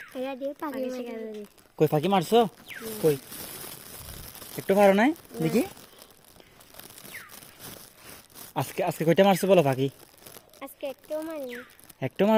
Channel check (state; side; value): identical; both; correlation 1.00